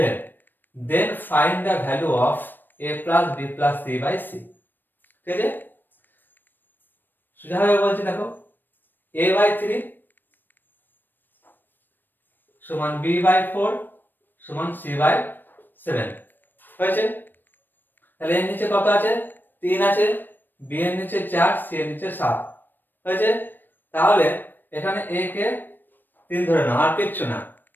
then find the value of a plus b plus c/c। ঠিক আছে, সোজাভাবে বলছি দেখো, a/3 সমান b/4 সমান c/7 হয়েছে। তাহলে এর নিচে কত আছে? 3 আছে, b এর নিচে 4, c এর নিচে 7 হয়েছে। তাহলে এখানে a কে 3 ধরে নাও, আর কিচ্ছু না।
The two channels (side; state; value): right; late; 0.093 ms